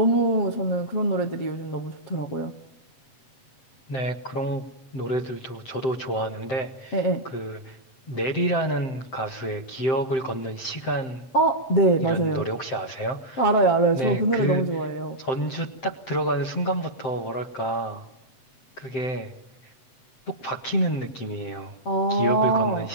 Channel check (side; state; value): right; late; 7.7 ms